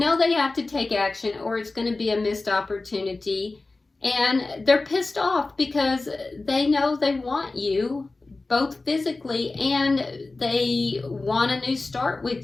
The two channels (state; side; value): quieter; right; 3.4 dB